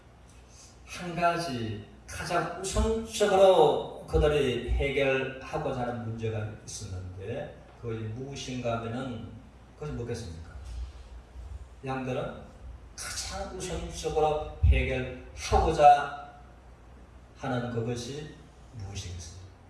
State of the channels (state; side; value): identical; both; correlation 1.00